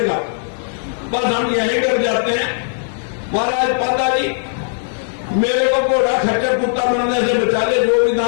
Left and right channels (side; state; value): right; silent; 67 dB below the other